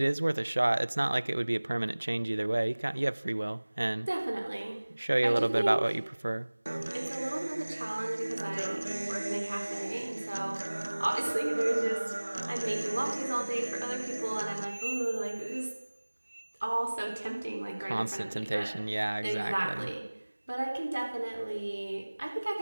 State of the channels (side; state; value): both; inverted; correlation -1.00